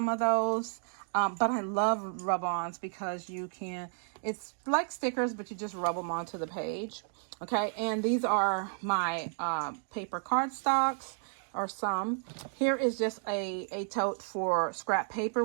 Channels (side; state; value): left; silent; 56 dB below the other